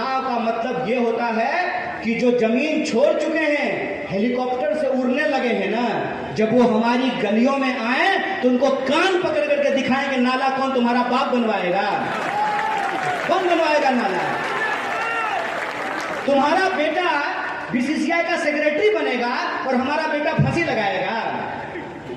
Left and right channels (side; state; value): both; identical; correlation 1.00